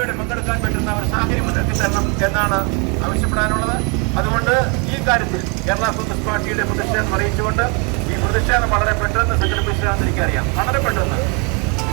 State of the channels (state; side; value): quieter; left; 33.2 dB